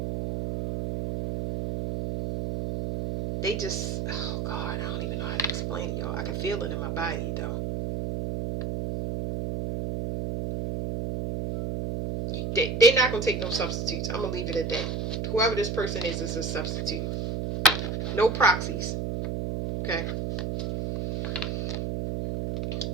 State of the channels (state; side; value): noise; right; hum, 2 dB below the sound